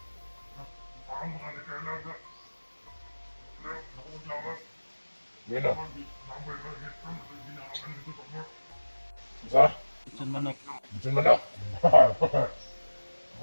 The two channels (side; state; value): both; inverted; correlation -1.00